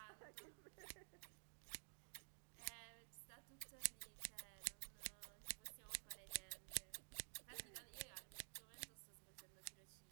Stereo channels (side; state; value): left; silent; digital silence